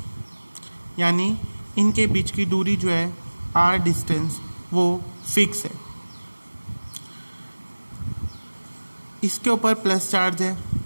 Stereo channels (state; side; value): inverted; both; correlation -1.00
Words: यानी इनके बीच की दूरी जो है R डिस्टेंस वो फिक्स है। इसके ऊपर प्लस चार्ज है,